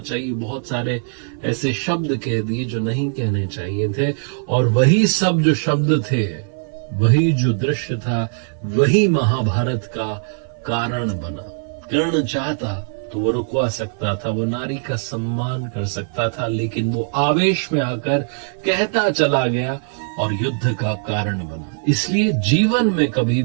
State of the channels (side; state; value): left; silent; 60 dB below the other